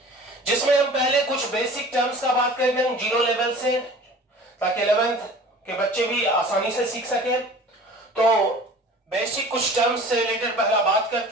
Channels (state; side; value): normal; both; correlation 0.43